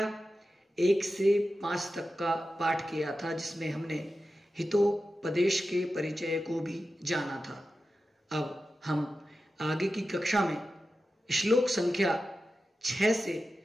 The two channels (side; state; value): both; normal; correlation 0.92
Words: 1 से 5 तक का पाठ किया था, जिसमें हमने हितोपदेश के परिचय को भी जाना था। अब हम आगे की कक्षा में श्लोक संख्या 6